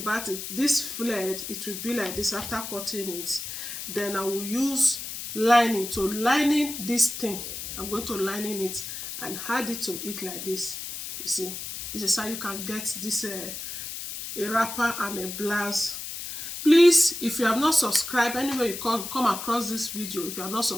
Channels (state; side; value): noise; left; hiss, 7 dB below the sound